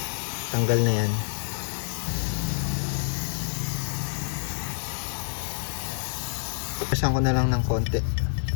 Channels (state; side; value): silent; right; 60 dB below the other